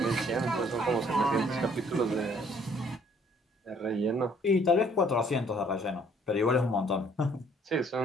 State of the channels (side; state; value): both; normal; correlation 0.61